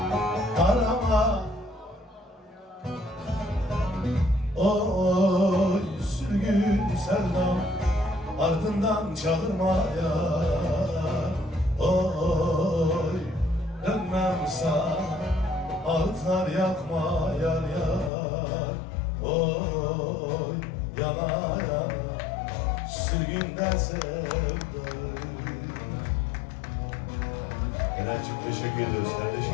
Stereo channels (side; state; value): right; drops out; at 18.1 s